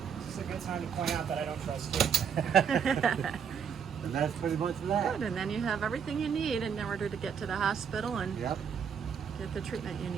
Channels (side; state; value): left; quieter; 7.2 dB